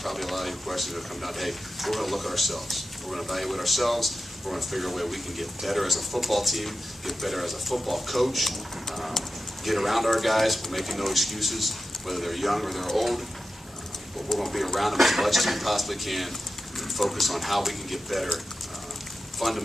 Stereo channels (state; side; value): normal; both; correlation 0.91